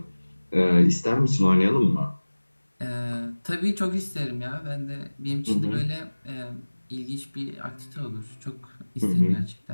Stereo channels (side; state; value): both; inverted; correlation -1.00